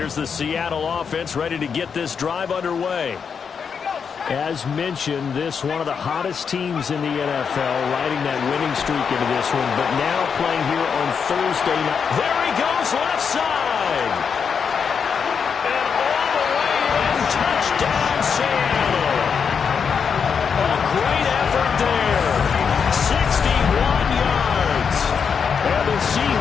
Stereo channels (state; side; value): quieter; right; 6.4 dB